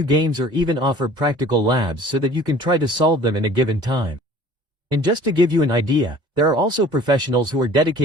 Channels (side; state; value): left; late; 2.2 ms